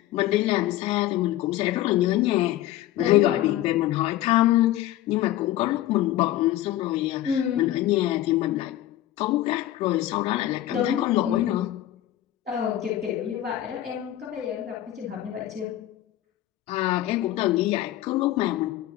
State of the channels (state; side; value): quieter; right; 13.9 dB